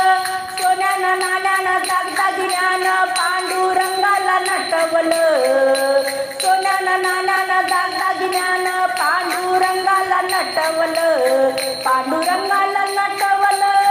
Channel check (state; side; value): identical; both; correlation 1.00